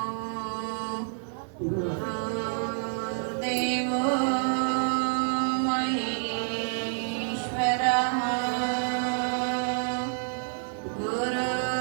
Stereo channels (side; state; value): left; silent; 59 dB below the other